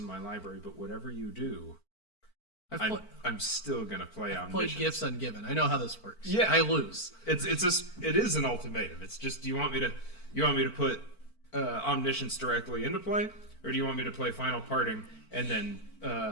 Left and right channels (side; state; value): right; late; 4.5 ms